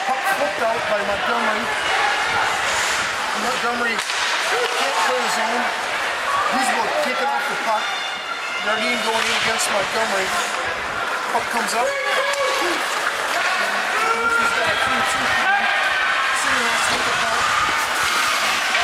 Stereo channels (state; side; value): identical; both; correlation 1.00